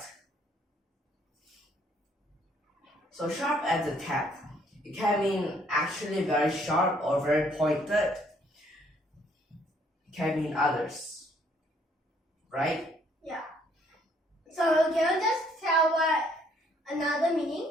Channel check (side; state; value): both; normal; correlation 0.65